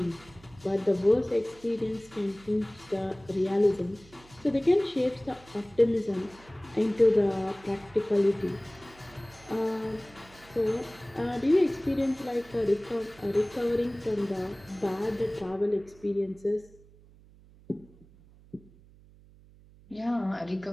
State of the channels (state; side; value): noise; right; hum, 25 dB below the sound